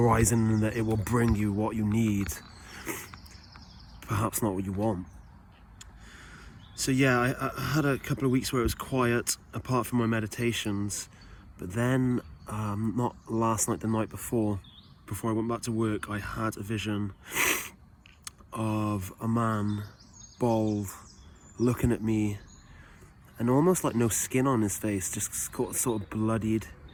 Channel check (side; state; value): both; identical; correlation 1.00